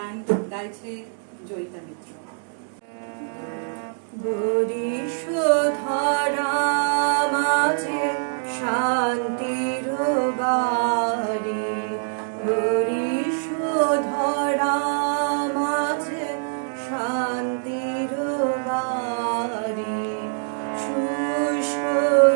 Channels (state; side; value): silent; left; digital silence